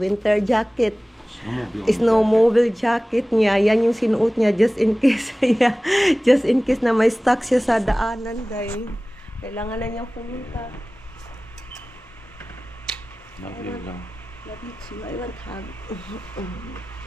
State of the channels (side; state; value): both; normal; correlation 0.97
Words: jacket. Snowmobile jacket niya. Yan yung sinuot niya just in case. Yeah. Just in case na may stuck siya sa daanan day. Kailangan na niyang pumunta. Love you too. I want hug.